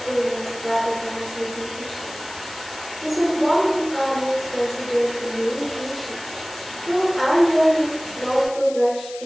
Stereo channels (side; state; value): left; noise; hiss, 15 dB below the sound